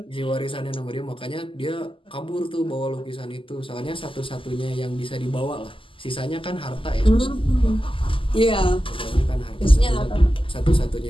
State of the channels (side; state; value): right; late; 0.25 ms